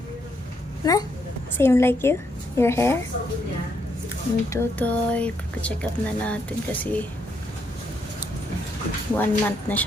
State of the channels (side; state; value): both; normal; correlation 0.76